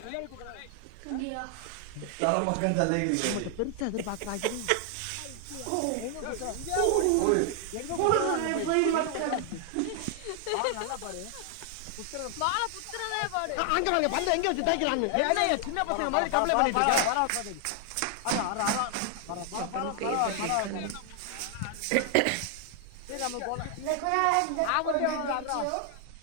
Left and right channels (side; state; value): both; different; correlation 0.00